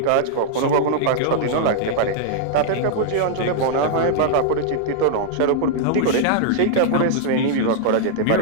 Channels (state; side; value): different; both; correlation -0.01